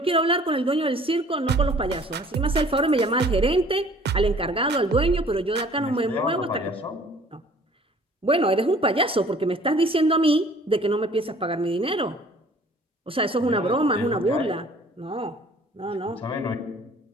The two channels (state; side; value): normal; both; correlation 0.52